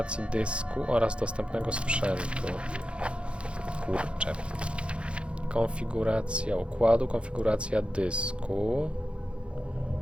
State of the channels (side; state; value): left; late; 0.058 ms